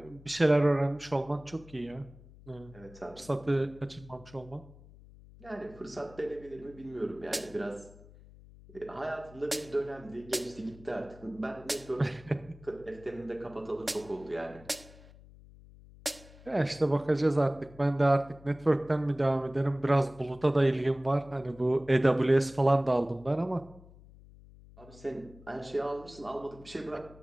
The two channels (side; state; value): left; noise; hum, 21 dB below the sound